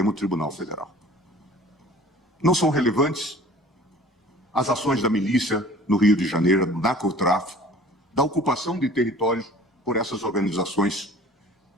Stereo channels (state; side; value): normal; both; correlation 0.47